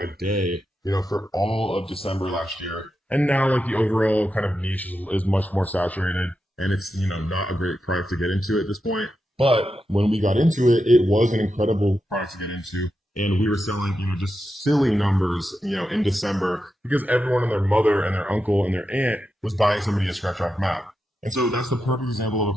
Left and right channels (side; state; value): both; normal; correlation 0.88